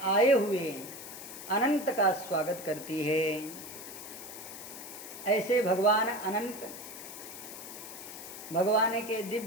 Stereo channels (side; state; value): left; noise; hiss, 12 dB below the sound